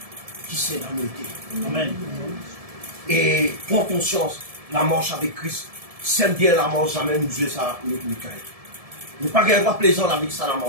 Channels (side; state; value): left; late; 1.7 ms